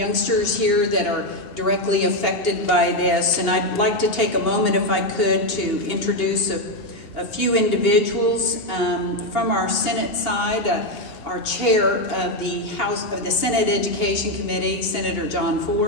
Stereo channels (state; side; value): late; right; 2.8 ms